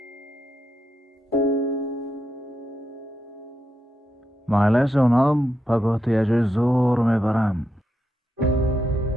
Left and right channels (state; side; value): normal; both; correlation 0.84